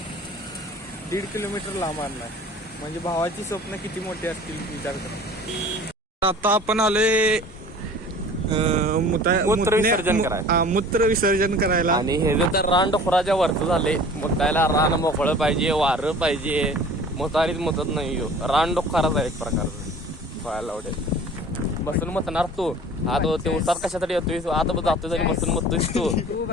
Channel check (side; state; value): both; normal; correlation 0.45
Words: 1.5 किलोमीटर लांब आणलाय. म्हणजे भावाची स्वप्न किती मोठी असतील विचार करा. आता आपण आलोय मूत्र विसर्जन करायला. मूत्र विसर्जन करायला. आणि हे जे तर रान डोखराच्या वरचं झाले. मुतायला रान मोकळं पाहिजे, वारं पाहिजे. मुतारीत मुतत नाही हो. रान डोखाराच आहे एक प्रकारचं. पाहायला आवडेल. बसून मतणार तू. आता ते उसात कशासाठी येतोय? आता जातोय आणि बसून मतोयस तू.